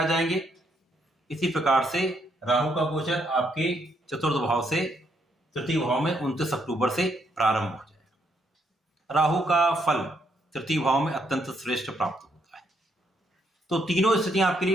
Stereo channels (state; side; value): normal; both; correlation 0.74